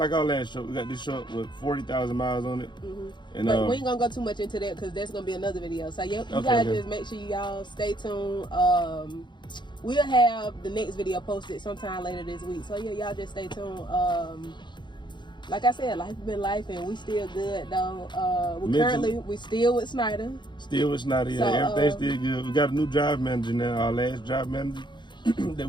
our last truck. We got this truck with 40,000 miles on it. And but we ain't gonna go too much into that because that's gonna be another video. So you guys just make sure y'all stay tuned. We'll have the next video posted sometime later this week. So yeah, y'all just stay tuned. Like I said, life been life, and we still good though. We still with Snyder. Still with Snyder, yeah. So, everything's still good. We got a new drive manager now. Our last drive manager that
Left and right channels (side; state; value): right; late; 0.22 ms